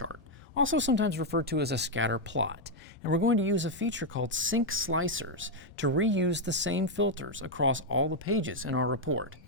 also sometimes referred to as a scatter plot, and we're going to use a feature called sync slicers to reuse the same filters across all the pages in our report.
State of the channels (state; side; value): normal; both; correlation 0.00